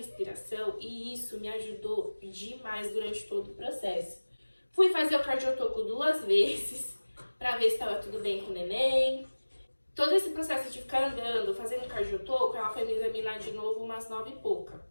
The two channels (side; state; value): both; inverted; correlation -1.00